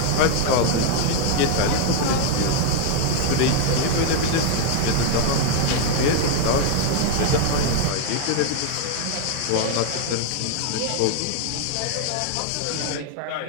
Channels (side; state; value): both; different; correlation 0.01